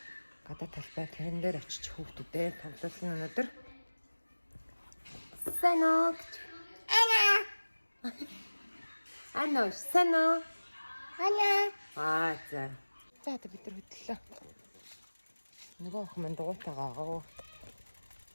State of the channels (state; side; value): inverted; both; correlation -1.00